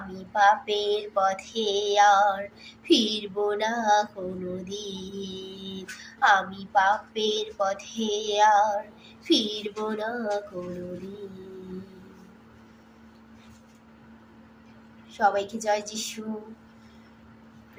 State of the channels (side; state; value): both; identical; correlation 1.00